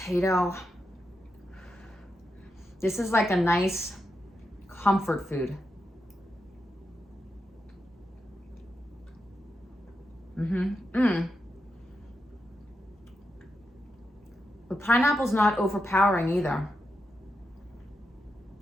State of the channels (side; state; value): both; normal; correlation 0.86